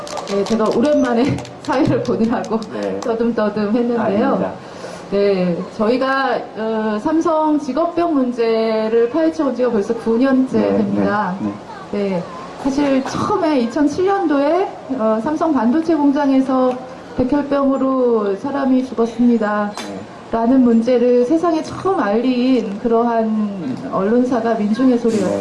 네, 제가 오랜만에 사회를 보느라고 떠듬떠듬 했는데요. 아닙니다. 네, 저희가 삼성 직업병 문제를 파헤쳐온 지가 벌써 9년째 됩니다. 네, 사실 처음에 2007년도에 삼성 반도체 공장에서 백혈병으로 사람이 죽었습니다. 라는 문제를 세상에 처음 알린 그러한 언론사가 민중의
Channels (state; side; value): identical; both; correlation 1.00